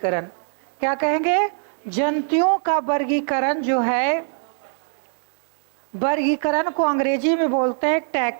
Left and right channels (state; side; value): silent; left; digital silence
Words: क्या कहेंगे? जंतुओं का वर्गीकरण जो है, वर्गीकरण को अंग्रेजी में बोलते हैं